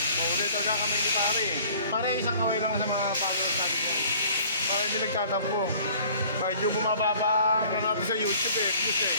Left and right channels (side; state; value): both; inverted; correlation -0.52